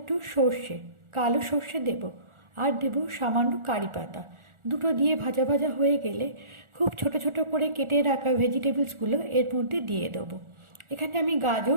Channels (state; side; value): late; left; 1.4 ms